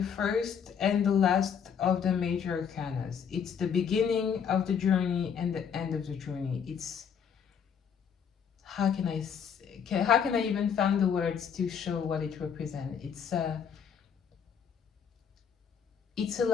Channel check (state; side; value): quieter; right; 7.3 dB